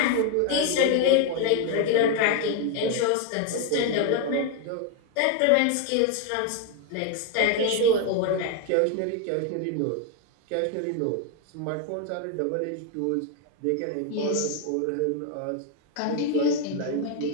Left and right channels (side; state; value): both; different; correlation 0.01